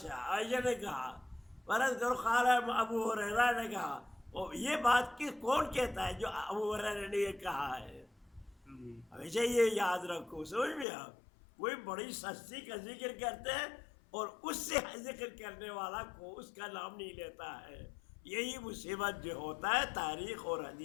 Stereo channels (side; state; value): right; drops out; at 10.9 s